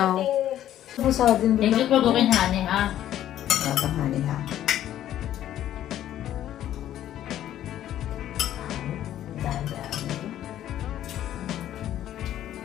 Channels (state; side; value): quieter; right; 12.0 dB